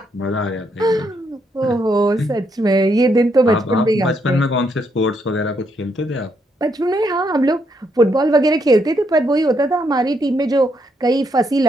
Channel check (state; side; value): normal; both; correlation 0.76